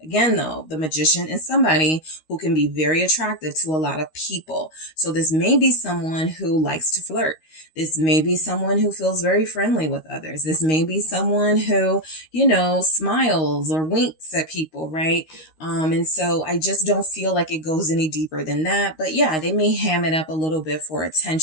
Again, though, the Magician is somebody who can be very attractive to a lot of people. So this may be someone who likes to flirt. This may be someone who feels very friendly with others. This may be someone who, you know, smiles or winks at people, right? And so I just don't feel like it goes any deeper than that. But yeah, they may ham it up a little bit for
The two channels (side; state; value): right; late; 13 ms